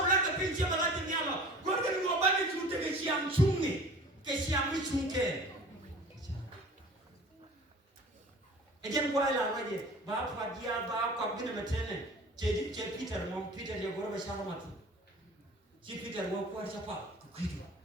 lagi pinjam lagi ni Allah. Gua kan gua bagi cuti ke siang cungi, ke siang ni cungke. Ejen gua lah lagi. Bapa dia bapa gini macam ni. Jadi Peter dia gua bersama mati. Si Peter gua kuat siapa? Kukidu.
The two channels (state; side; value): normal; both; correlation 0.43